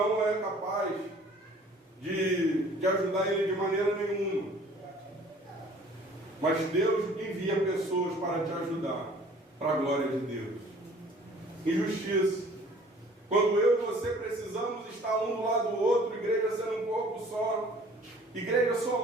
é capaz de ajudar ele de maneira nenhuma. Mas Deus envia pessoas para te ajudar, para a glória de Deus. Injustiça. Quando eu e você precisamos estar um do lado do outro, igreja sendo um corpo só, igreja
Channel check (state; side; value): normal; both; correlation 0.52